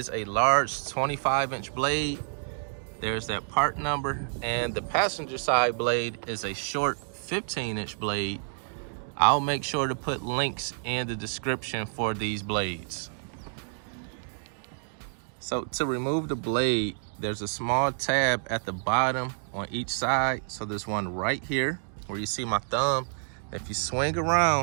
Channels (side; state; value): left; silent; digital silence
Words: a large 25-inch blade. There's that part number. And the passenger side blade is a short 15-inch blade. I'll make sure to put links in the description for these blades. So to remove the blade, there's a small tab at the bottom on each side. So there's one right here where you see my thumb. If you swing